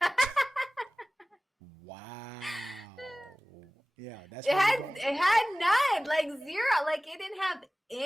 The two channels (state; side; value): normal; both; correlation 0.98